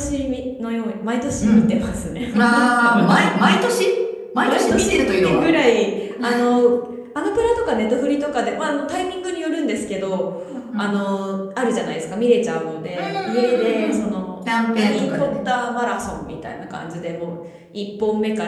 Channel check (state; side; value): identical; both; correlation 1.00